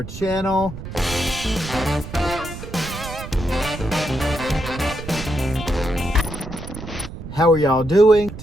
channel. How are y'all doing?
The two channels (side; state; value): right; noise; rumble, 11 dB below the sound